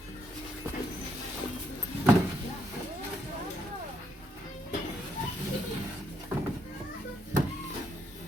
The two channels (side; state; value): both; normal; correlation 0.75